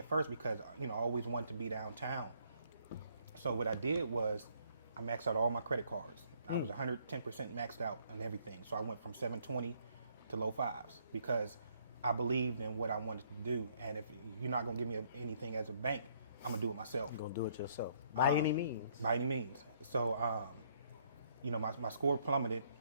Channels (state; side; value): inverted; both; correlation -0.67